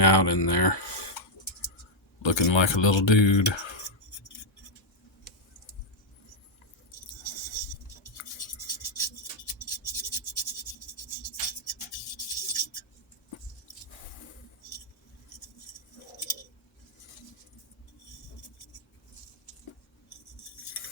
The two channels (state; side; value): normal; both; correlation -0.02